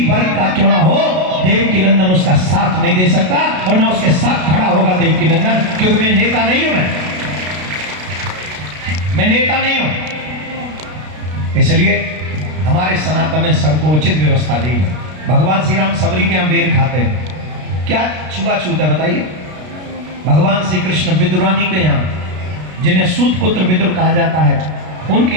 वर्ग का क्यों ना हो, देवकी नंदन उसका साथ नहीं दे सकता और ना उसके साथ खड़ा होगा देवकी नंदन, क्योंकि मैं नेता नहीं हूं। मैं नेता नहीं हूं। इसलिए हमारे सनातन ने सबको उचित व्यवस्था दी है। भगवान श्री राम सबरी के यहाँ बेर खाते हैं, क्या छुआछूत है बताइए? भगवान श्री कृष्ण विदुरानी के यहाँ, जिन्हें सूत पुत्र विदुर कहा जाता है, उनके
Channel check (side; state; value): left; late; 33 ms